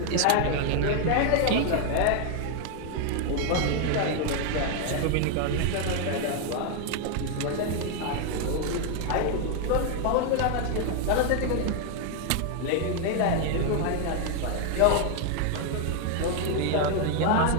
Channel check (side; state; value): both; different; correlation 0.00